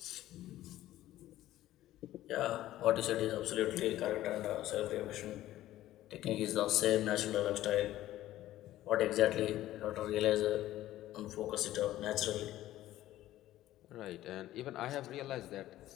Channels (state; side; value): quieter; right; 14.4 dB